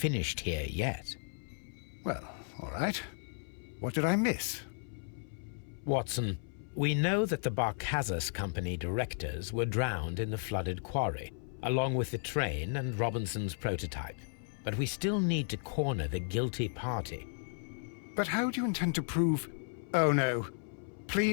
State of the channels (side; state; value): right; silent; 55 dB below the other